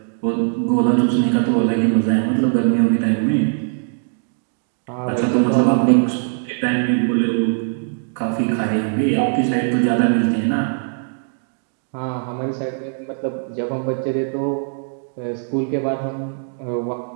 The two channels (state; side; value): silent; left; digital silence